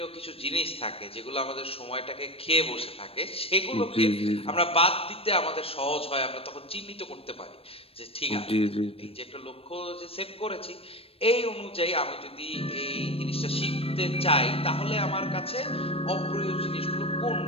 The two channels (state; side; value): late; right; 0.28 ms